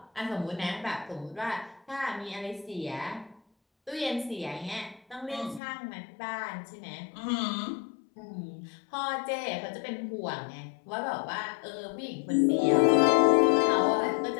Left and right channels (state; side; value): drops out; right; at 5.6 s